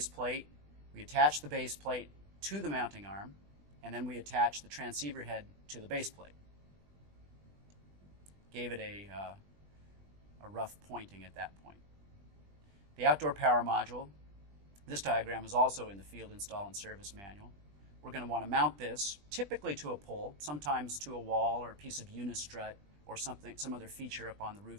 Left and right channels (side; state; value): left; late; 20 ms